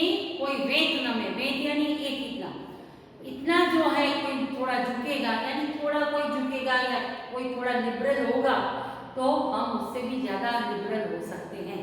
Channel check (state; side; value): identical; both; correlation 1.00